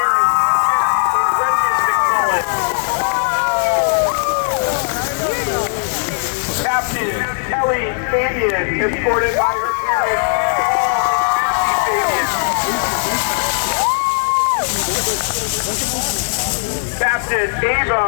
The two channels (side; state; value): right; silent; 67 dB below the other